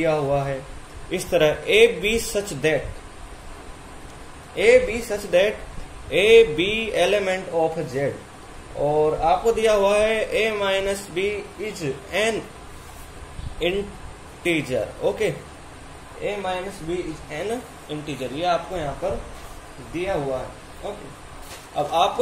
हुआ है इस तरह, A B such that A B element of Z, और आपको दिया हुआ है A minus B is an integer, okay, A minus B is an integer, ये आपको यहाँ पर दिया हुआ है, ओके। अब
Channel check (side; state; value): both; identical; correlation 1.00